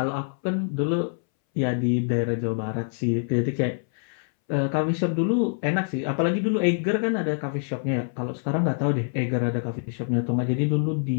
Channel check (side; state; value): right; silent; 61 dB below the other